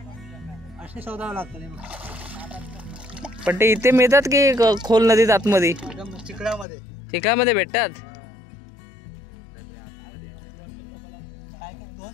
पण ते इथे मिळतात की खोल नदीत आतमध्ये? चिखलामध्ये भेटतात.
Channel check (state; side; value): drops out; right; at 6.7 s